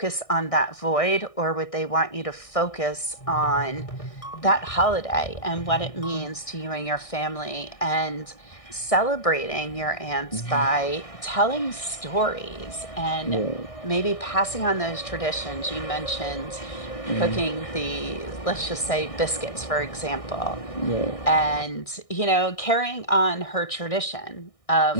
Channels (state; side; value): late; right; 1.6 ms